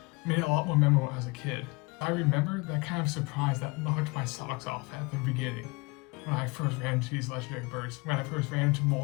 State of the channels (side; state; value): right; quieter; 26.8 dB